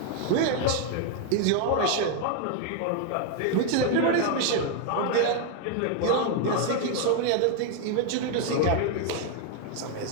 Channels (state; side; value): different; both; correlation 0.01